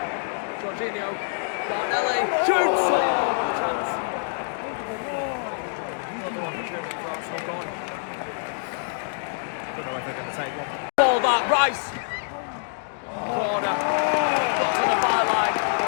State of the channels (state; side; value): silent; right; digital silence